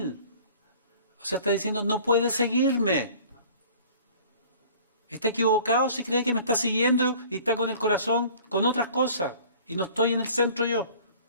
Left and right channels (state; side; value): inverted; both; correlation -0.48